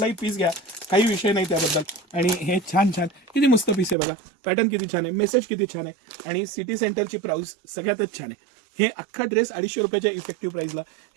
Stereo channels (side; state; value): left; drops out; at 4.0 s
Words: पीस घ्या, काही विषय नाही त्याबद्दल. आणि हे छान छान किती मस्त पीस आहे बघा, पॅटर्न किती छान आहे, मेसेज किती छान आहे. आणि सिटी सेंटरची प्राइस सगळ्यातच छान आहे. हे अख्खा ड्रेस 250 रुपयाच्या इफेक्टिव्ह प्राइसला.